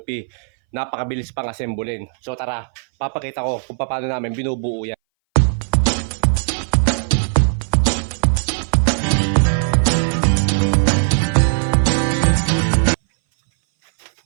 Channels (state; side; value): silent; left; 62 dB below the other